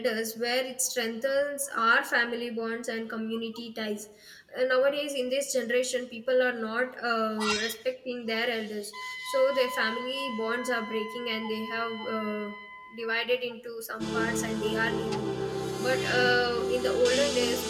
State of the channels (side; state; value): both; identical; correlation 1.00